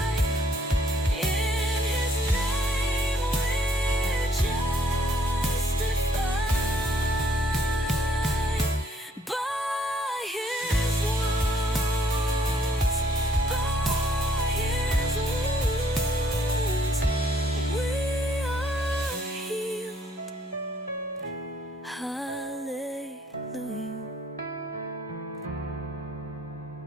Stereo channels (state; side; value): normal; both; correlation 0.65